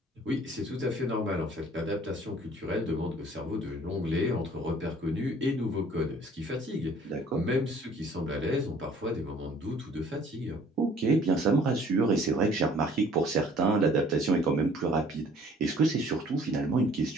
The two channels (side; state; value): both; normal; correlation 0.54